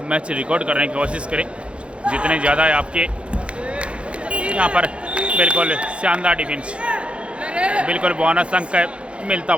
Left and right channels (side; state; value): left; late; 0.059 ms